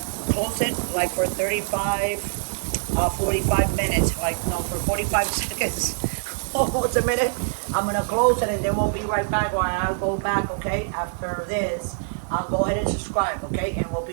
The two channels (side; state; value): left; silent; 62 dB below the other